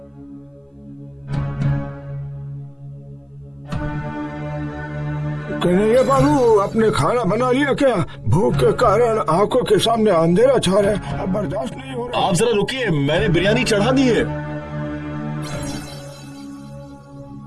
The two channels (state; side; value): identical; both; correlation 1.00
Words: कन्हैया बाबू, आपने खाना बना लिया क्या? भूख के कारण आंखों के सामने अंधेरा छा रहा है, अब बर्दाश्त नहीं हो रहा। आप जरा रुकिए, मैंने बिरयानी चढ़ा दी है।